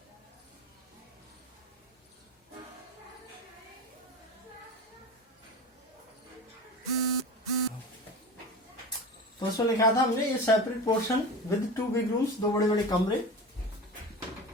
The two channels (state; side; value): normal; both; correlation 0.31